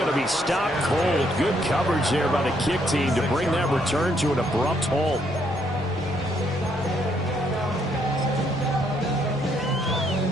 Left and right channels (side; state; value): both; normal; correlation 0.72